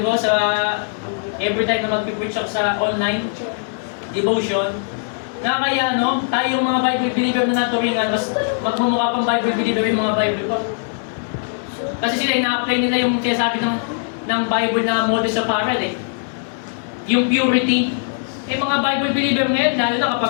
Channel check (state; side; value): silent; right; digital silence